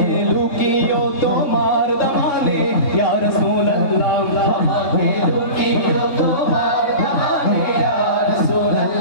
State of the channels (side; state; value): right; late; 3.6 ms